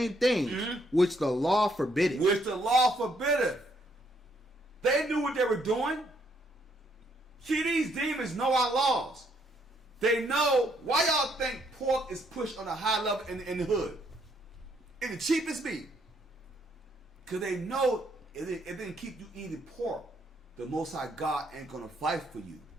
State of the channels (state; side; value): normal; both; correlation 0.71